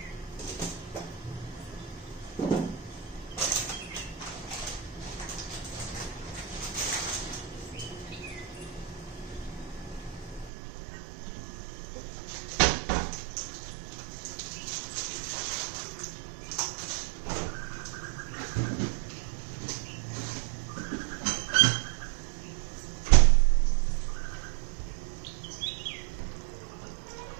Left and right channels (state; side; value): drops out; left; at 10.5 s